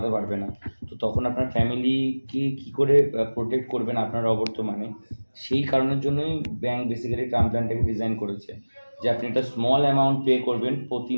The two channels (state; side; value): inverted; both; correlation -1.00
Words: পারবে না। তো তখন আপনার ফ্যামিলিকে কী করে প্রোটেক্ট করবেন আপনার অবর্তমানে, সেই কারণের জন্যই ব্যাংক বেসিক্যালি টার্ম প্ল্যানটাকে ডিজাইন করেছে, যে আপনি একটা স্মল অ্যামাউন্ট পে করবেন প্রতি